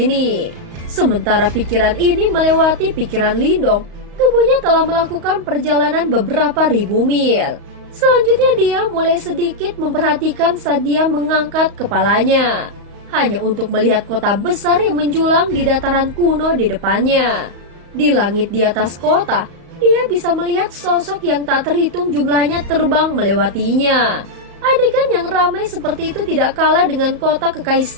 Sementara pikiran ini melewati pikiran Lindong, tubuhnya telah melakukan perjalanan beberapa ribu mil. Selanjutnya dia mulai sedikit memperhatikan saat dia mengangkat kepalanya. Hanya untuk melihat kota besar yang menjulang di dataran kuno di depannya. Di langit di atas kota, dia bisa melihat sosok yang tak terhitung jumlahnya terbang melewatinya. Adegan yang ramai seperti itu tidak kalah dengan kota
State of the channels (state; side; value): late; left; 35 ms